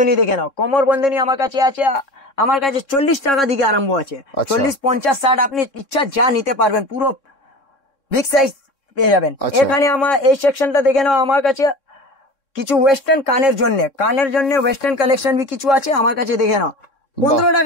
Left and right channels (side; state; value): right; late; 3.6 ms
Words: দেখে নাও। কোমর বন্ধনী আমার কাছে আছে, আমার কাছে 40 টাকা দিকে আরম্ভ আছে। 40, 50, 60 আপনি ইচ্ছা যা নিতে পারবেন, পুরো বিগ সাইজ পেয়ে যাবেন। এখানে আমার এই সেকশনটা দেখে নাও। আমার কাছে কিছু ওয়েস্টার্ন কানের জন্য ওয়েস্টার্ন কালেকশন भी কিছু আছে আমার কাছে, দেখে নাও। 15